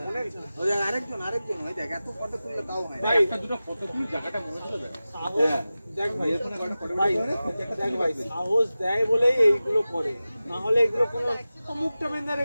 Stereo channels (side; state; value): both; inverted; correlation -0.95